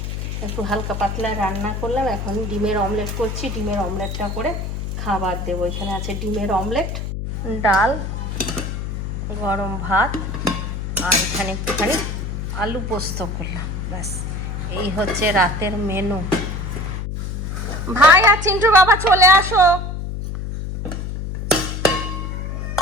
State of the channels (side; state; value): left; noise; hum, 4 dB below the sound